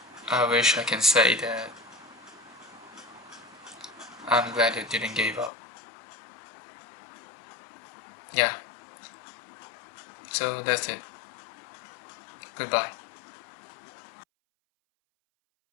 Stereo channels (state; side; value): drops out; right; at 5.5 s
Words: I wish I can say that I'm glad I didn't give up. Yeah. So that's it. Goodbye.